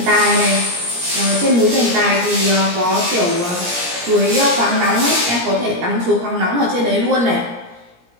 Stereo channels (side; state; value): left; late; 17 ms